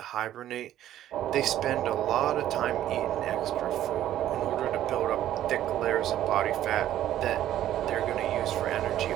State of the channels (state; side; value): quieter; left; 12.3 dB